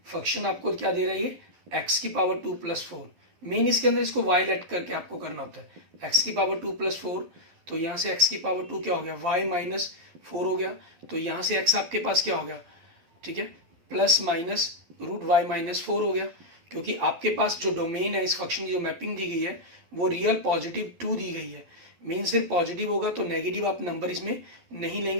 फंक्शन आपको क्या दे रहा है, ये x की पावर 2 + 4, मेन इसके अंदर इसको y लेट करके आपको करना होता है, x की पावर 2 + 4, तो यहाँ से x की पावर 2 क्या हो गया, y माइनस 4 हो गया, तो यहाँ से x आपके पास क्या हो गया, ठीक है, plus minus root y minus 4 हो गया, क्योंकि आपके पास जो डोमेन है इस फंक्शन की जो मैपिंग दी गई है वो रियल पॉजिटिव 2 दी गई है, मेन सिर्फ पॉजिटिव होगा तो नेगेटिव आप नंबर इसमें नहीं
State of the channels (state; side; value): late; left; 12 ms